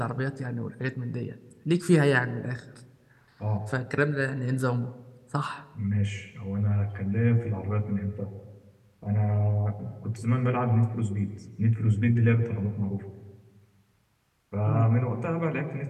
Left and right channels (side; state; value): both; identical; correlation 1.00